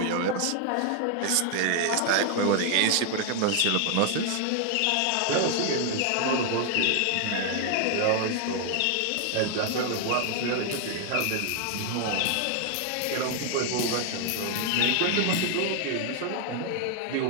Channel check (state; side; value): different; both; correlation 0.00